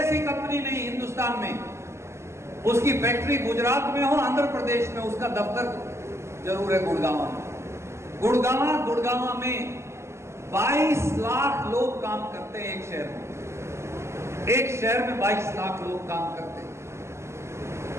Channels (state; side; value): late; left; 0.13 ms